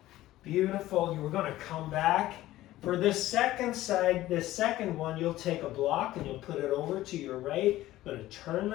Beautiful. We're going to come back. For this second side, this second one, you'll take a block and you'll put it over to your right. I'm going to turn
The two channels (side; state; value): right; quieter; 15.5 dB